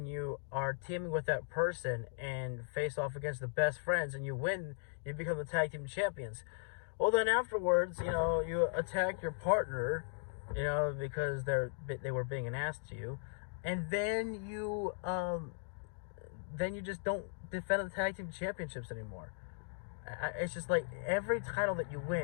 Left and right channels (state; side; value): silent; right; digital silence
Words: you are teaming with that person and face off against the best friends and you win, you become the tag team champions. Well, then afterwards, you attack your partner, because they were being an ass to you, and then you just don't defend the tag team championships anymore. It's just like every title that you